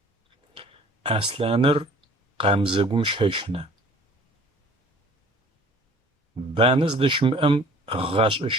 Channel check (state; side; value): normal; both; correlation 0.50